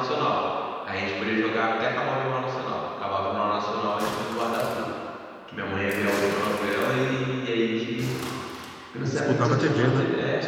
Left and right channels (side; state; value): both; identical; correlation 1.00